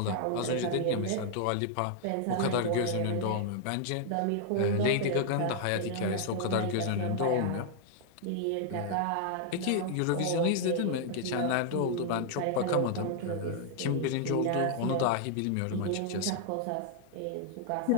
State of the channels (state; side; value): different; both; correlation -0.01